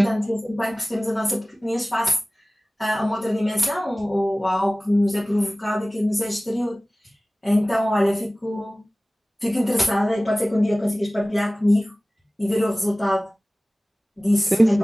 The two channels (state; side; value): normal; both; correlation 0.98